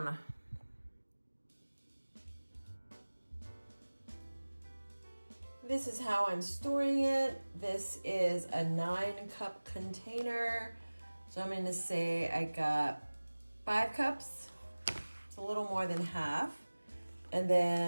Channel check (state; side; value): inverted; both; correlation -1.00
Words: This is how I'm storing it. This is a 9-cup container. So I'm gonna say I got 5 cups. It's a little more than half. And